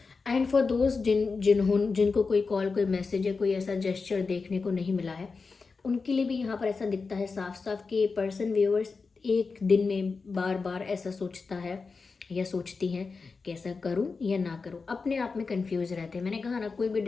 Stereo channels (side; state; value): right; quieter; 4.5 dB